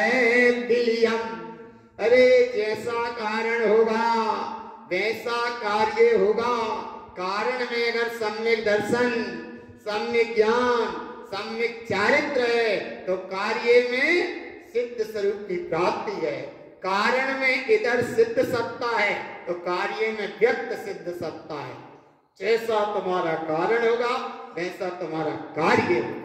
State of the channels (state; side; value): identical; both; correlation 1.00